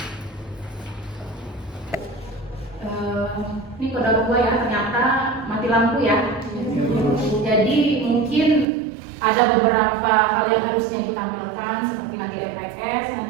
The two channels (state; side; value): drops out; left; at 8.7 s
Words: Ini kode gua ya, ternyata mati lampu ya. Jadi mungkin ada beberapa hal yang harusnya ibu tampilkan, seperti nanti RPS.